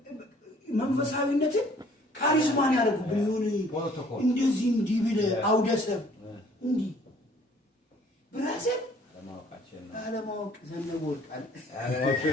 መንፈሳዊነትን ካሪዝማን ያደርጉብን ይሁን እንደዚህ እንዲህ ብለህ አውደሰብ እንዲህ ብራዘር አለማወቅ ዘነበ ወርቃል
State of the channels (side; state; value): both; normal; correlation 0.57